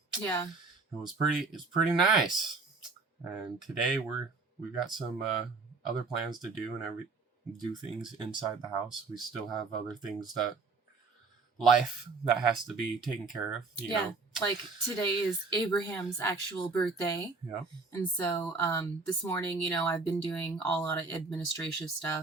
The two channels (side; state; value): left; quieter; 4.1 dB